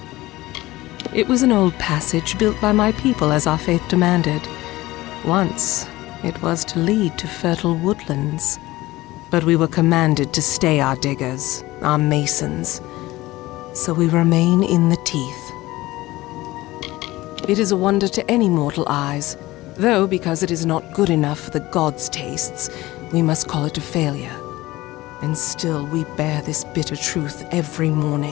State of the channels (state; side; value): quieter; right; 18.3 dB